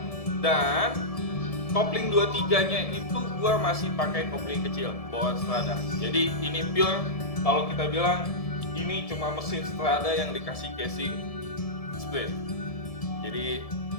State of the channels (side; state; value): right; late; 1.7 ms